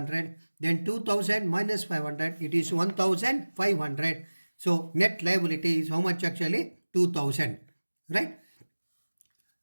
then 2,000 minus 500, it is 1,500. So net liability is how much actually? 2,000, right?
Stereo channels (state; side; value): inverted; both; correlation -1.00